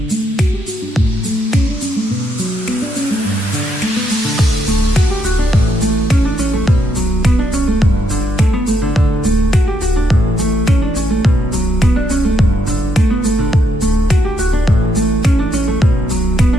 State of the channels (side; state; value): both; normal; correlation 0.76